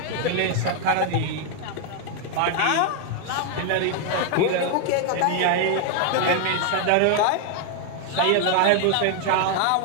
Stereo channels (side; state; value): both; different; correlation 0.00